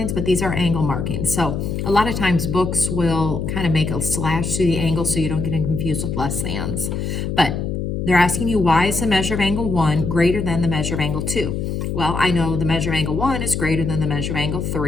but these are angle markings. So a lot of times books will kind of make a slash through the angle so you don't get confused with less thans. But they're asking you, why is the measure of angle 1 greater than the measure of angle 2? Well, I know the measure of angle 1 is greater than the measure of angle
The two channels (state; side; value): noise; left; hum, 3 dB below the sound